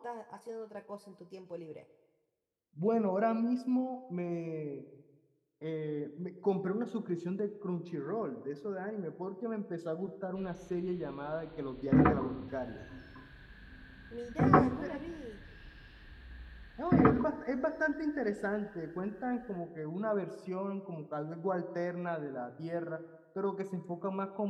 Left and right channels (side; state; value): both; identical; correlation 1.00